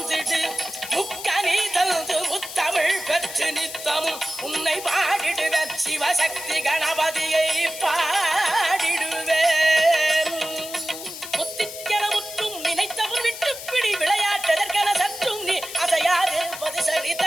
முக்கனி தந்து முத்தமிழ் பெற்று நித்தமும் உன்னை பாடிடுவேன் சிவசக்தி கணபதியை பாடிடுவேன் முத்திக்கென முற்றும் நினைத்தவன் விட்டு பிடி விளையாட்டதற்கென சற்றும் நீ அசையாதிருப்பது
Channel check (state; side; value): noise; left; hiss, 11 dB below the sound